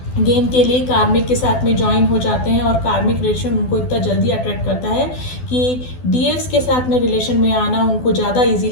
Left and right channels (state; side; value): late; right; 12 ms